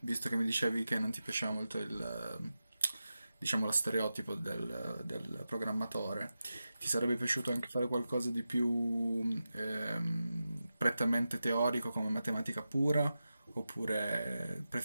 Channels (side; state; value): both; inverted; correlation -0.92